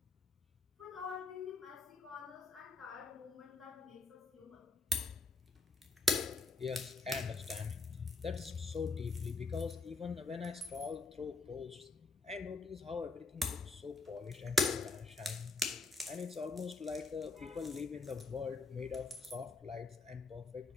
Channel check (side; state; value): right; quieter; 3.4 dB